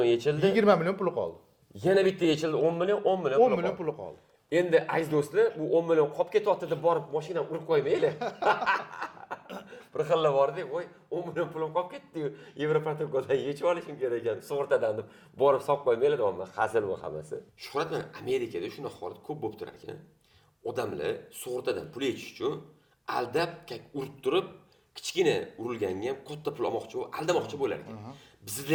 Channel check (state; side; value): identical; both; correlation 1.00